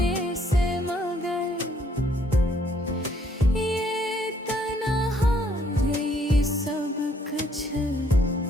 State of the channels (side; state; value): both; normal; correlation 0.66